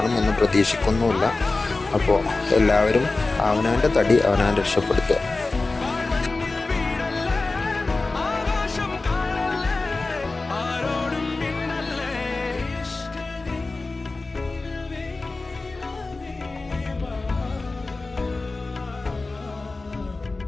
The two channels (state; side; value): quieter; right; 3.5 dB